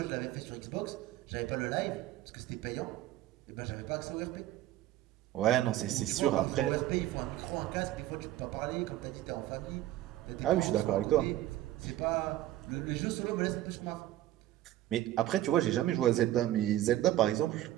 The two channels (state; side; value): quieter; left; 14.3 dB